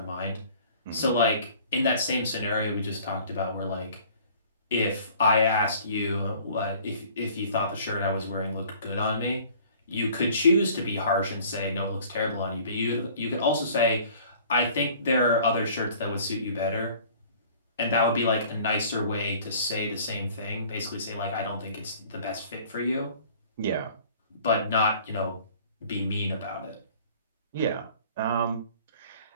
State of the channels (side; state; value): both; inverted; correlation -0.51